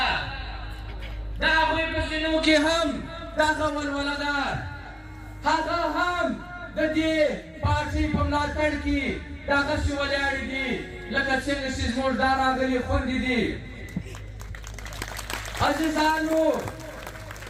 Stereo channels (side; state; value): both; identical; correlation 1.00